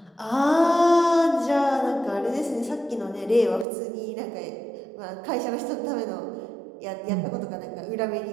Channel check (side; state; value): left; drops out; at 3.7 s